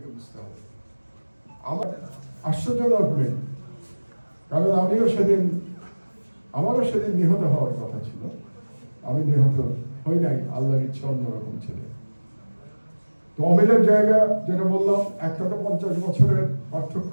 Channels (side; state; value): both; inverted; correlation -1.00